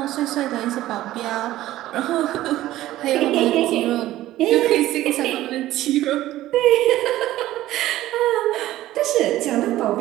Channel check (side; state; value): left; quieter; 14.9 dB